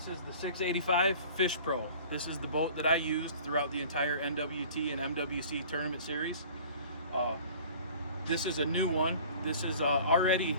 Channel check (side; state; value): both; inverted; correlation -0.45